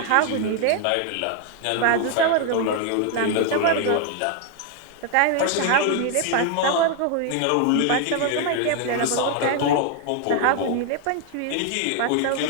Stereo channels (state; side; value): different; both; correlation 0.00